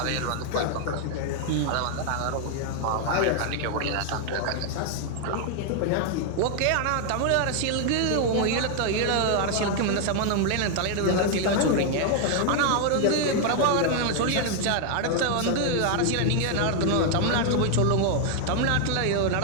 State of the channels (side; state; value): both; different; correlation 0.00